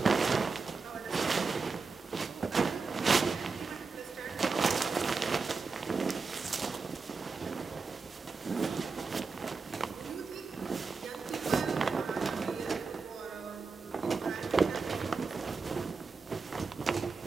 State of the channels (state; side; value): quieter; left; 4.6 dB